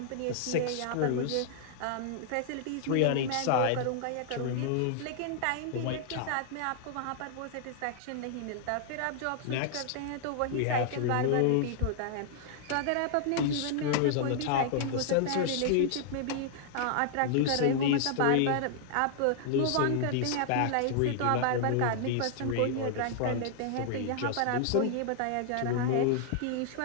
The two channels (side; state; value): both; different; correlation -0.01